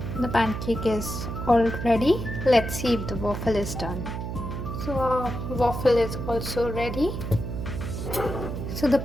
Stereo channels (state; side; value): noise; right; hum, 5 dB below the sound